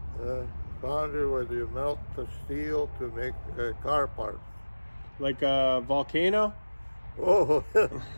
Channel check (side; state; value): both; inverted; correlation -1.00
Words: Foundry where you melt the steel to make car parts. Like a volcano? Oh,